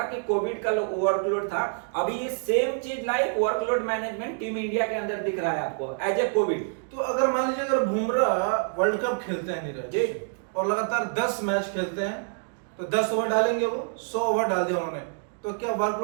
कि कोविड का वर्कलोड था। अभी ये सेम चीज like workload management team India के अंदर दिख रहा है आपको एज ए कोविड। तो अगर मान लीजिए अगर बुमराह वर्ल्ड कप खेलते हैं नीरज जी और लगातार 10 मैच खेलते हैं तो 10 ओवर डालेंगे, वो 100 ओवर डाल दिया उन्होंने, तो क्या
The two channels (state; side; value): silent; left; 60 dB below the other